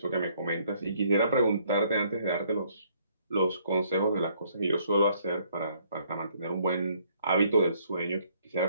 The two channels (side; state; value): both; inverted; correlation -0.66